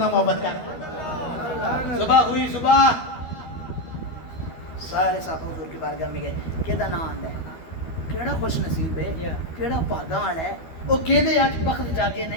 محبت کر صبح ہوئی صبح سارے صاحب حضور کی بارگاہ میں گئے کیدا نام آندا ہے کیڑا خوش نصیب ہے کیڑا بھاگاں والا ہے وہ کہدے اج بخت جاگے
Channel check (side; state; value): right; late; 12 ms